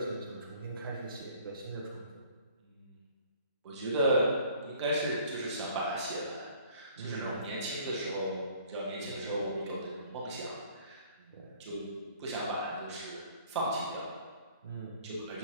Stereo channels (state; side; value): inverted; both; correlation -0.56